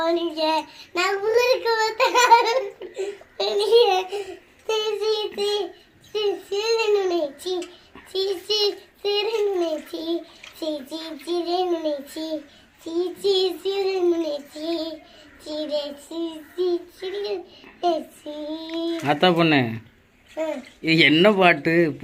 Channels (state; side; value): identical; both; correlation 1.00